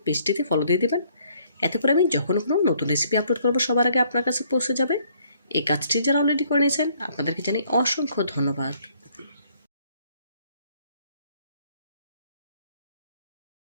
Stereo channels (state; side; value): inverted; both; correlation -0.65